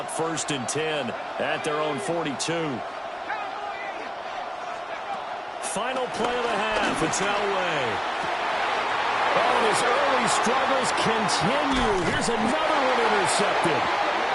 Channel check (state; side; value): identical; both; correlation 1.00